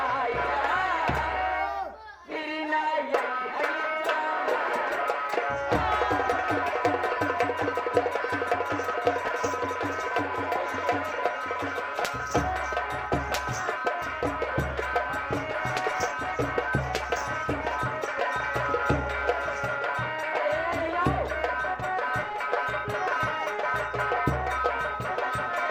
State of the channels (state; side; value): identical; both; correlation 1.00